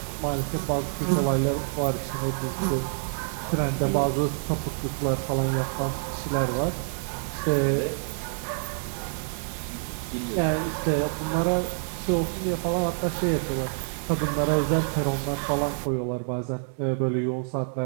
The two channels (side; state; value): left; silent; digital silence